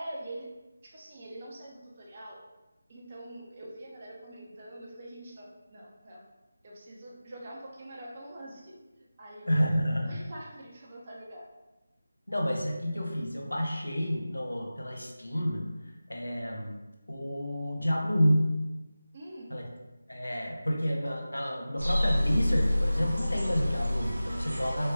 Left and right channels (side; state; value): both; inverted; correlation -0.97